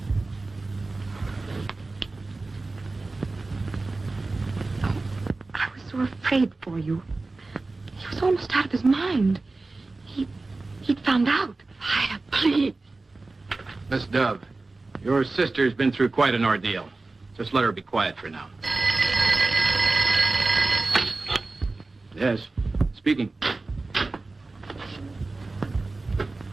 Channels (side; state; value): left; quieter; 3.4 dB